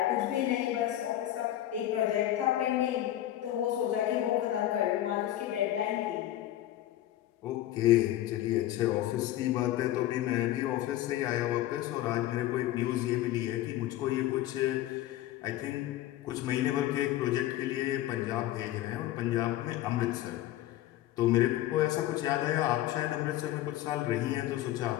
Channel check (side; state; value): right; quieter; 13.7 dB